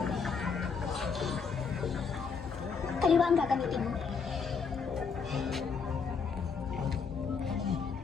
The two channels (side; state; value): right; quieter; 5.6 dB